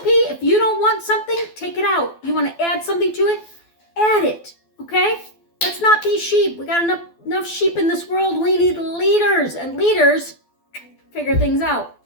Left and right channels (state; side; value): late; right; 12 ms